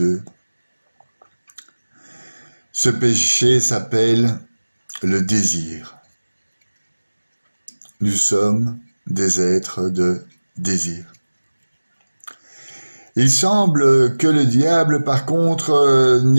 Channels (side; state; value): both; inverted; correlation -1.00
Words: Ce péché s'appelle le désir. Nous sommes des êtres de désir. Il semble que le diable, par contre,